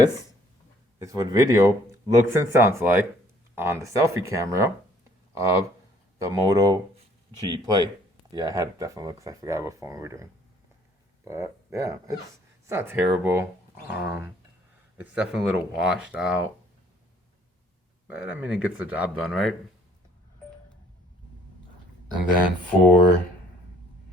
is what video looks and sounds like on the selfie camera of the Moto G Play. Yeah, I had to definitely look because I forgot what phone we were doing. But yeah, it's not terrible. It's definitely a little washed out. But I mean, it gets the job done, right? And then for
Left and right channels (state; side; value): normal; both; correlation 0.60